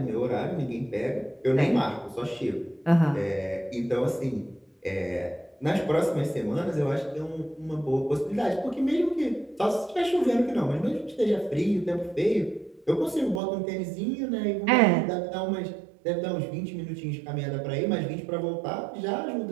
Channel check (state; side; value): drops out; left; at 13.4 s